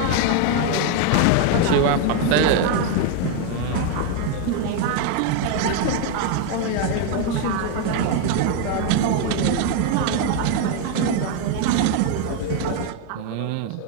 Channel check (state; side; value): different; both; correlation 0.01